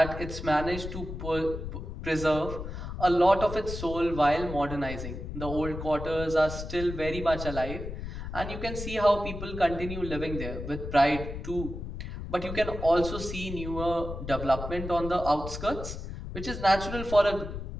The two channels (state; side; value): noise; left; rumble, 7 dB below the sound